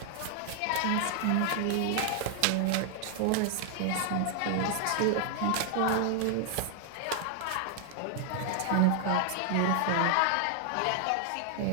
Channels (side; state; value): both; different; correlation 0.00